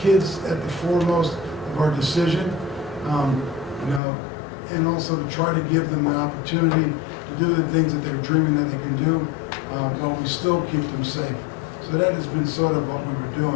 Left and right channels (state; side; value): drops out; right; at 4.0 s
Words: at the foremost of our decision, and also to try to give them an opportunity to do the things that they're dreaming that they can do, while we still keep them safe. So that has been sort of what we were